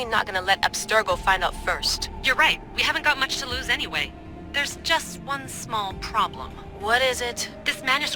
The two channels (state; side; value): identical; both; correlation 1.00